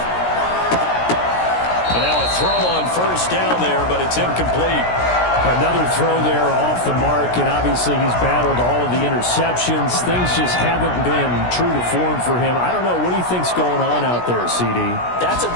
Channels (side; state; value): right; late; 17 ms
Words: And now a throw on first down there, but it's incomplete. Another throw there off the mark, and obviously he's battled all of the interceptions. Things just haven't been true to form for him. I don't know. What do you think's going on out there, CD? That's a